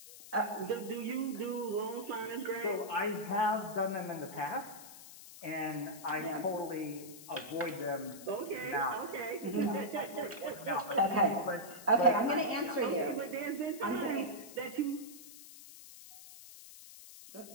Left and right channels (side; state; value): left; noise; hiss, 16 dB below the sound